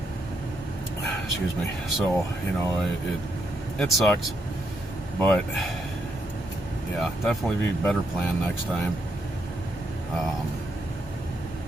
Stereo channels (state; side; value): normal; both; correlation 0.78